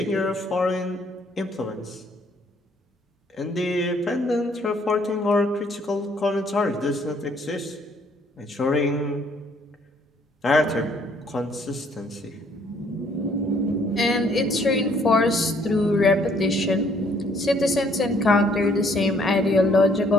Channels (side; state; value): both; normal; correlation 0.64